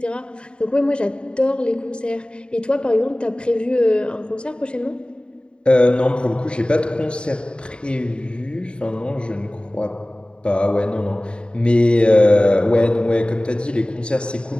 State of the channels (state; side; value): late; right; 0.052 ms